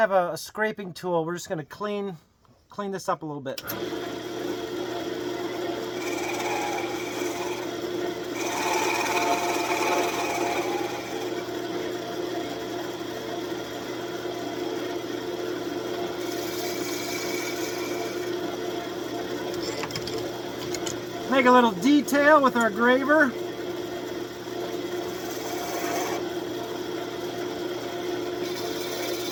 a scraping tool. We're just going to clean this up a little bit. Make a little detail with our graver.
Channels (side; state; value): both; identical; correlation 1.00